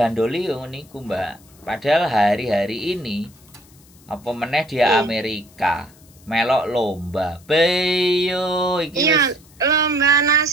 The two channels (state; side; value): noise; left; hiss, 27 dB below the sound